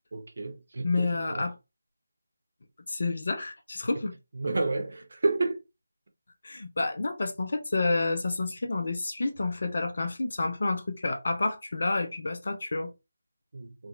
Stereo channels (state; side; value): inverted; both; correlation -0.93